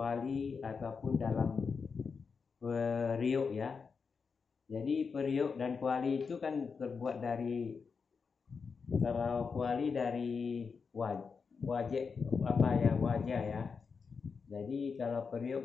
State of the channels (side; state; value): right; quieter; 5.4 dB